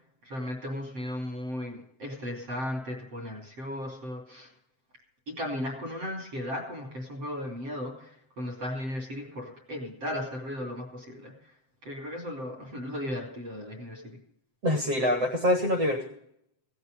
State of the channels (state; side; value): late; left; 7.7 ms